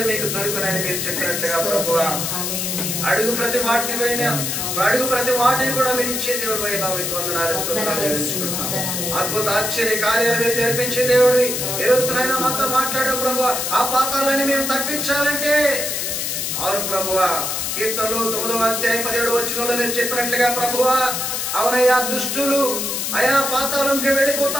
మీకు దొరుకునని మీరు చెప్పినట్లుగా ప్రభువా అడుగు ప్రతి వాటిని కూడా మీరు ఇచ్చే దేవుడు అయినా మీకు వందనాలు, స్తోత్రాలు చెల్లించుకుంటున్నాం. అద్భుత ఆశ్చర్య కార్యాలు మీరు జరిపించే దేవుడివి. ఈ రోజునైనా మాతో మాట్లాడావు ప్రభువా. ఆ పాతాలని మేము తప్పించాలంటే అవును ప్రభువా, కీర్తనలు 9వ అధ్యాయం 17వ వచనంలో మీరు చెప్పినట్లుగా ప్రభువా అవునయ్యా దుష్టులు అయా పాతాళంకి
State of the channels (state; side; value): noise; left; hiss, 2 dB below the sound